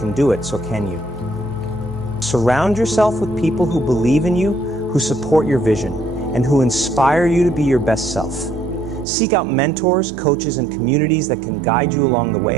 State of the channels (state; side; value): drops out; left; at 9.1 s